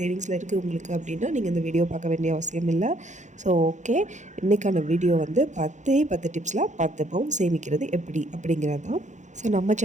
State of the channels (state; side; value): late; left; 0.35 ms